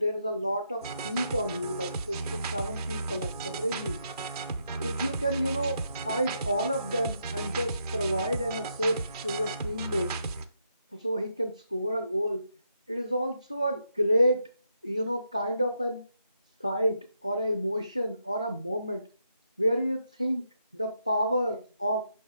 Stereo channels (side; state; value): both; inverted; correlation -0.80